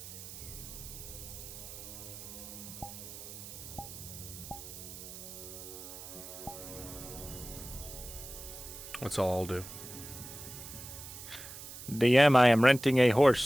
That's all I'll do. DM, I am renting a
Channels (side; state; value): right; noise; hiss, 12 dB below the sound